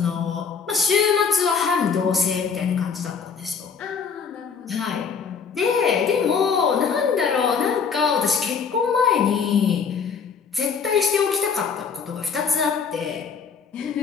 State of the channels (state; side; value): quieter; right; 6.0 dB